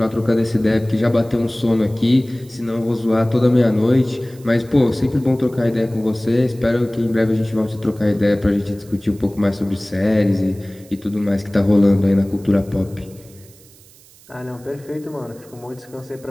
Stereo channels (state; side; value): noise; right; hiss, 25 dB below the sound